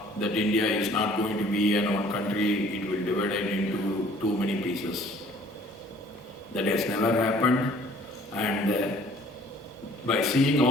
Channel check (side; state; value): both; normal; correlation 0.55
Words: that India is not going to be an one country, it will divide it into too many pieces. That has never happened, and by seeing